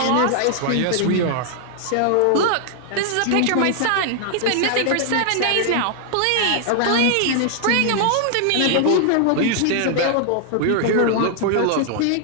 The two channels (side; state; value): both; different; correlation 0.00